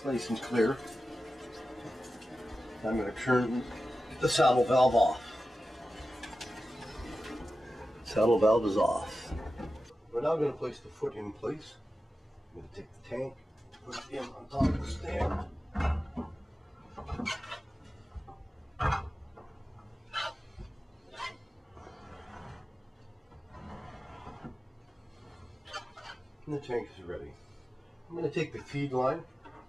nice and clear. I'm going to turn the saddle valve off. Saddle valve is off. We're now going to place the foot in place. I'm going to take the tank, put it in on top of the stand. And the tank is ready. I'm going to take the feed line,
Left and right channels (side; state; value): both; normal; correlation 0.93